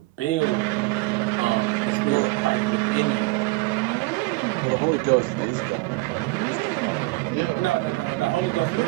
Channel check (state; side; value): quieter; left; 22.9 dB